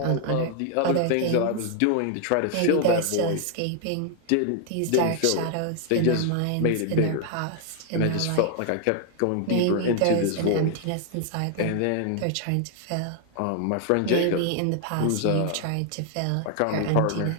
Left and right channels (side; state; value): both; different; correlation 0.00